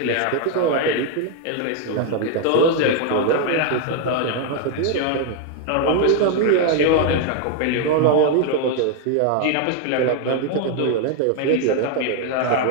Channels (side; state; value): both; different; correlation 0.01